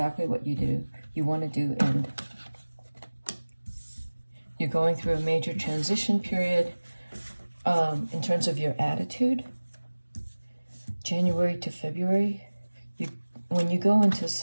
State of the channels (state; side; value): inverted; both; correlation -1.00